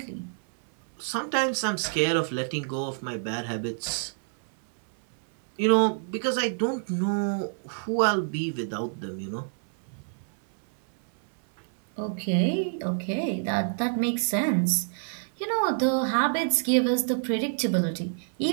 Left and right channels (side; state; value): left; silent; 60 dB below the other